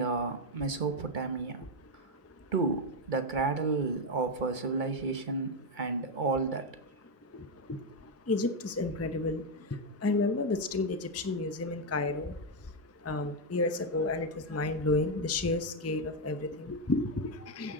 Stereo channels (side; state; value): both; normal; correlation 0.05